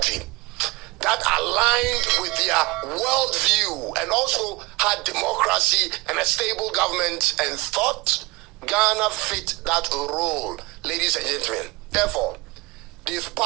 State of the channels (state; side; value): quieter; left; 22.9 dB